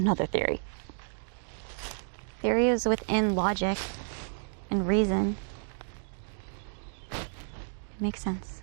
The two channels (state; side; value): silent; left; digital silence